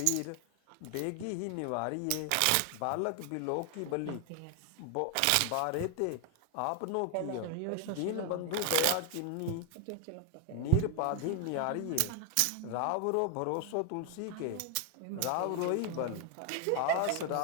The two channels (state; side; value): different; both; correlation 0.00